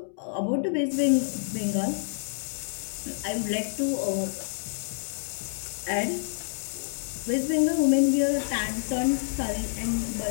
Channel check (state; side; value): silent; right; digital silence